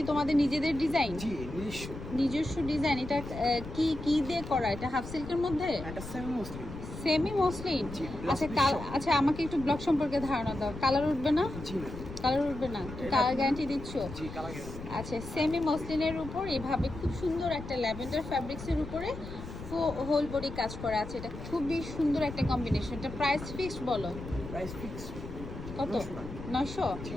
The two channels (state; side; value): noise; left; rumble, 11 dB below the sound